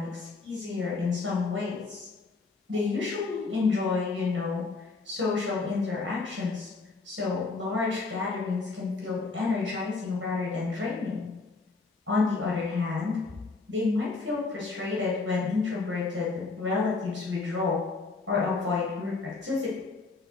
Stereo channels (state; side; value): quieter; right; 4.0 dB